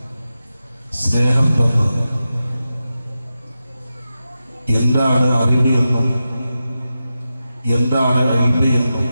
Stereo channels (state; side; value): inverted; both; correlation -0.92